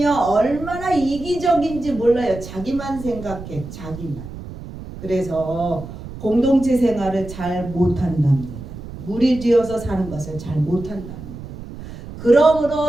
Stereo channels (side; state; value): right; noise; rumble, 12 dB below the sound